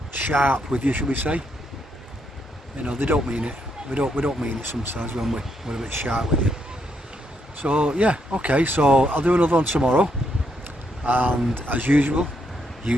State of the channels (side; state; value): both; normal; correlation 0.77